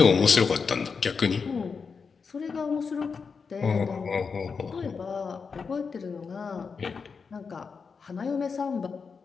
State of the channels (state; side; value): quieter; right; 5.4 dB